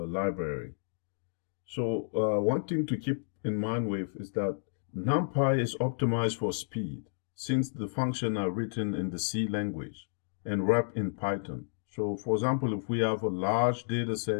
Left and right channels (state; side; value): silent; right; digital silence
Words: So one thing to keep in mind with is that numpy is optimized for speed since the functions are written in the C language and wrapped in Python. So for example, if we have a large data